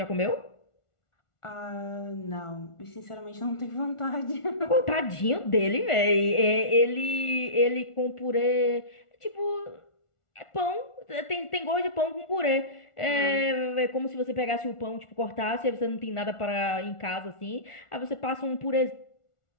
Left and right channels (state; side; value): late; right; 1.4 ms